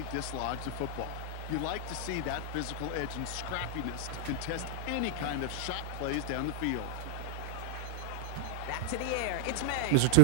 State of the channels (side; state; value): both; different; correlation 0.00